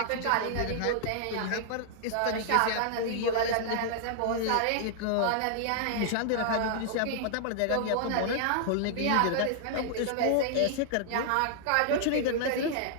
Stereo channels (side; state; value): both; different; correlation -0.01